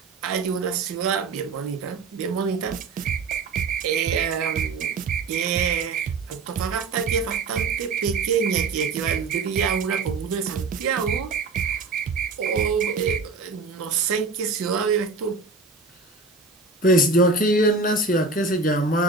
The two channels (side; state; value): left; quieter; 4.0 dB